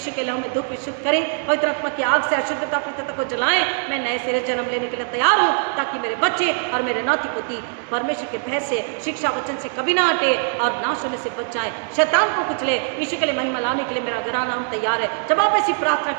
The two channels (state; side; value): silent; left; 56 dB below the other